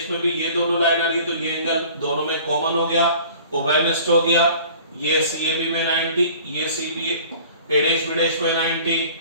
में भी ये दोनों लाइन आ रही है। तो ये एंगल दोनों में कॉमन हो गया, उभयनिष्ठ हो गया। ये CAB में 90, ये CA', में 90।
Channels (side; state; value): both; inverted; correlation -0.47